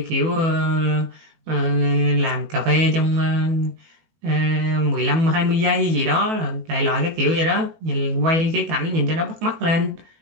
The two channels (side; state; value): left; late; 18 ms